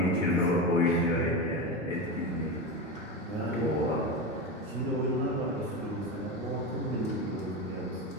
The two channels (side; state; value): both; normal; correlation 0.19